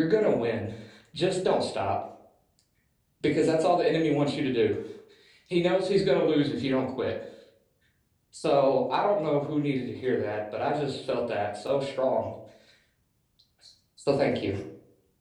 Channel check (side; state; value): both; identical; correlation 1.00